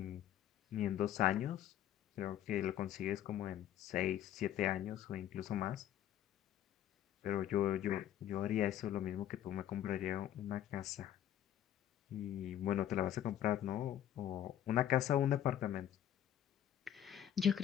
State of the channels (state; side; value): quieter; right; 11.2 dB